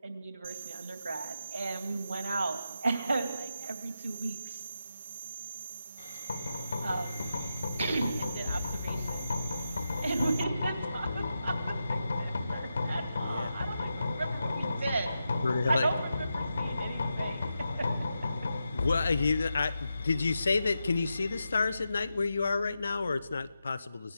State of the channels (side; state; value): both; inverted; correlation -0.88